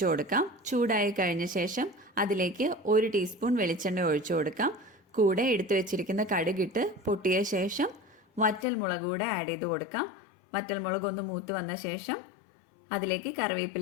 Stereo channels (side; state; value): right; drops out; at 8.7 s